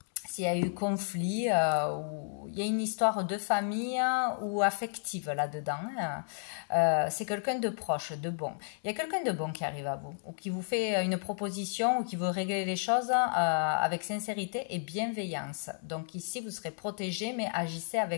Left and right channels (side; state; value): right; silent; digital silence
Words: S'il y a eu conflit, ou il y a une histoire de famille ou affective là-dedans, c'est quelqu'un de proche, de bon. Il y a quelqu'un de bon qui arrive à vous, ou qui vous fait une proposition, ou qui veut régler les choses avec sincérité et bienveillance. Donc ici, vous serez protégé, mais agissez